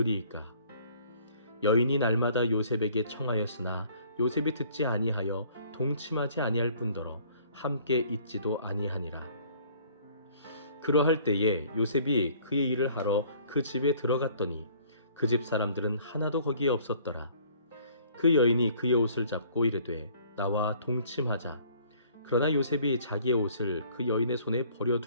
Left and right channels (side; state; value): both; inverted; correlation -0.56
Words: 여인이 날마다 요셉에게 청하였으나 요셉이 듣지 아니하여 동침하지 아니할 뿐더러 함께 있지도 아니하니라. 그러할 때에 요셉이 그의 일을 하러 그 집에 들어갔더니 그 집 사람들은 하나도 거기에 없었더라. 그 여인이 그의 옷을 잡고 이르되 나와 동침하자. 그러나 요셉이 자기의 옷을 그 여인의 손에